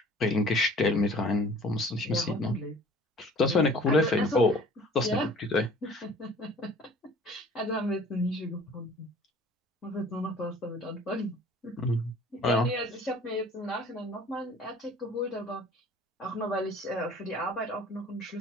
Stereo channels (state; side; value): normal; both; correlation 0.49